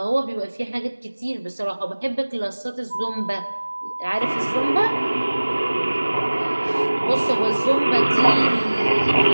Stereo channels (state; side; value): inverted; both; correlation -1.00